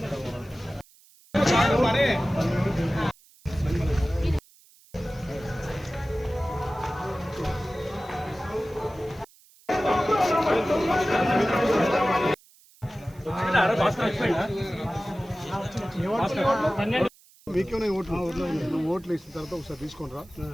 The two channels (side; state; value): right; noise; hiss, 27 dB below the sound